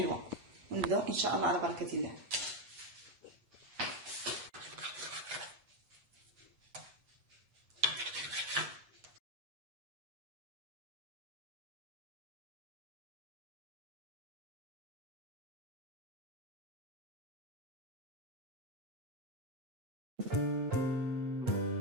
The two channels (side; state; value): left; late; 8.2 ms